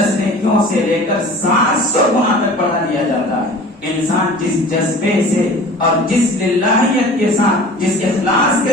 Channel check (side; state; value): both; normal; correlation 0.42